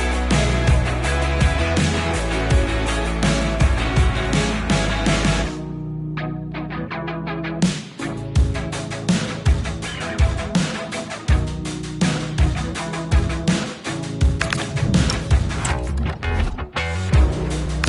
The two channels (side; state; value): both; identical; correlation 1.00